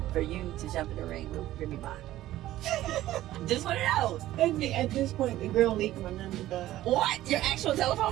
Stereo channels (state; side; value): quieter; left; 14.7 dB